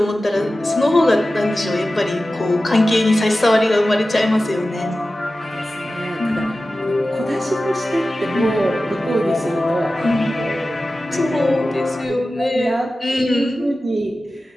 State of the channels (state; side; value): normal; both; correlation 0.95